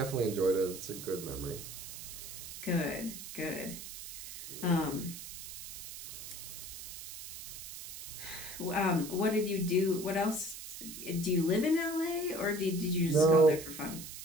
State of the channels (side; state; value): right; noise; hiss, 10 dB below the sound